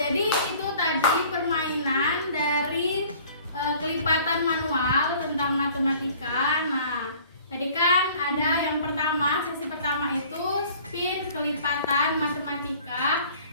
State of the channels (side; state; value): both; inverted; correlation -0.51